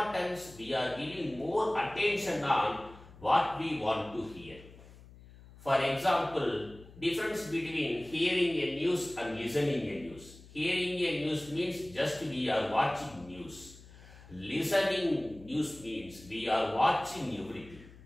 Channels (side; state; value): left; noise; hum, 20 dB below the sound